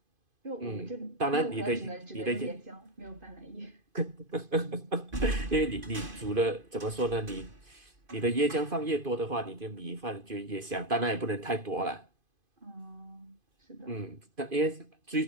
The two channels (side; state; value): left; late; 2.5 ms